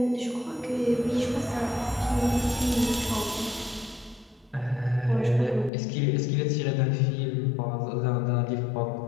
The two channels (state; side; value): drops out; right; at 5.7 s